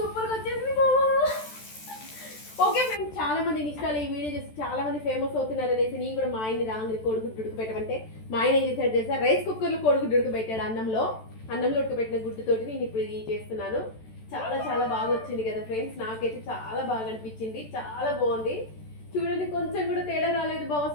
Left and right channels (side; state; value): right; late; 14 ms